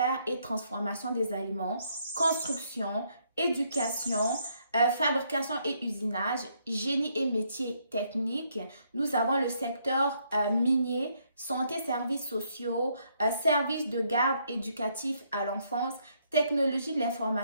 et transformation des aliments, construction, éducation, fabrication et usinage, génie et métiers techniques. Nous avons le secteur minier, santé, services sociaux, services de garde éducatif à l'enfance, technologie de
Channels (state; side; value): inverted; both; correlation -0.72